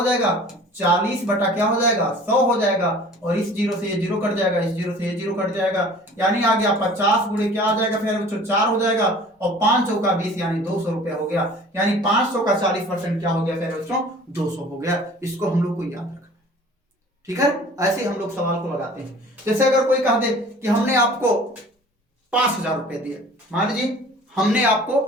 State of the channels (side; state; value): both; normal; correlation 0.47